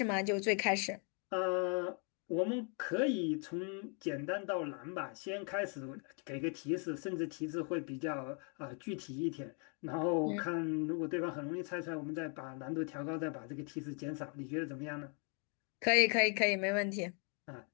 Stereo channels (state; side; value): quieter; right; 39.5 dB